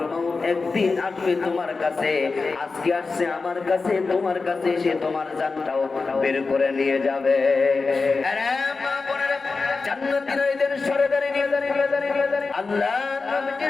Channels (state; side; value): quieter; right; 4.2 dB